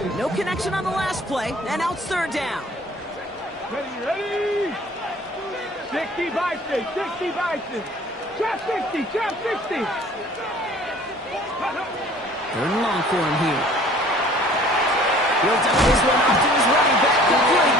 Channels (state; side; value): normal; both; correlation 0.51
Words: No connection on the last play, and now it's 3rd down. Ready? 60 Bison, 60 Bison. Trap 60, trap 60. 3rd and long for him here. He'll dump this one off to his running back,